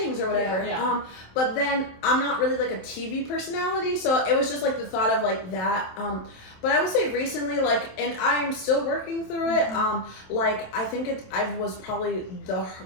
or whatever. But then I'm not really like a TV personality, so it was just like the thought of like that. But I would say recently, like, and I'm still working through it. Like I think I was probably the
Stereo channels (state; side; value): late; right; 27 ms